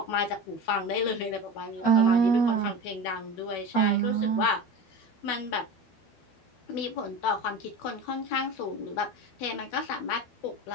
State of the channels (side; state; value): right; late; 12 ms